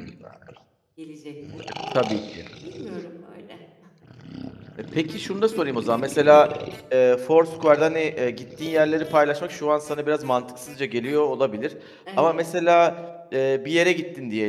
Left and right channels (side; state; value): both; identical; correlation 1.00